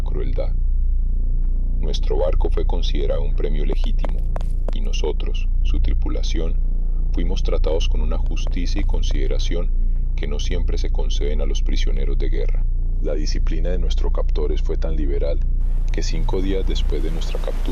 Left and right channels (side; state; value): both; identical; correlation 1.00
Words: crueldad. Nuestro barco fue considerado un premio legítimo, y nosotros, su tripulación, fuimos tratados con una justicia y consideración que no siempre se conceden a los prisioneros de guerra. La disciplina de nuestros captores fue tan liberal que 5 días después de nuestra